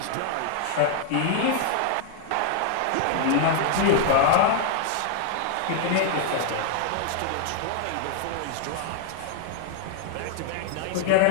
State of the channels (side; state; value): both; different; correlation 0.00